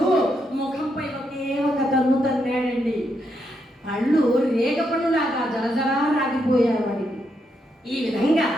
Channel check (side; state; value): both; normal; correlation 0.80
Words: ముఖంపై ఒకే ఒక తన్ను తన్నాడండి. పళ్ళు రేగ పళ్ళులాగా జలజలా రాగిపోయారు వాడికి. ఈ విధంగా